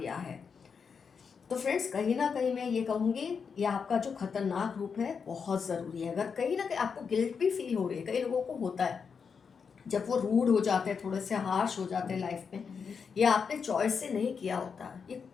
है। तो फ्रेंड्स, कहीं ना कहीं मैं ये कहूँगी, ये आपका जो खतरनाक रूप है बहुत ज़रूरी है। अगर कहीं ना कहीं आपको गिल्ट भी फील हो रही है, कई लोगों को होता है जब वो रूड हो जाते हैं, थोड़े से हार्श हो जाते हैं लाइफ में, ये आपने चॉइस से नहीं किया होता,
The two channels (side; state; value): right; quieter; 6.0 dB